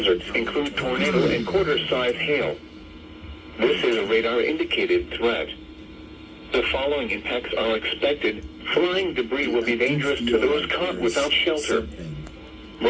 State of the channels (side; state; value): both; identical; correlation 1.00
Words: include tornado and quarter-size hail. This is a radar-indicated threat. The following impacts are expected. Flying debris will be dangerous to those caught without shelter.